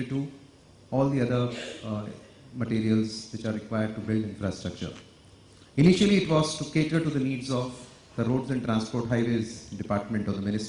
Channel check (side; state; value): both; identical; correlation 1.00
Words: to all the other materials which are required to build infrastructure. Initially, it was to cater to the needs of the Roads and Transport Highways Department of the